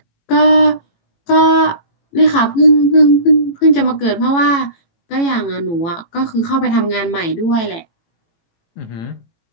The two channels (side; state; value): right; late; 18 ms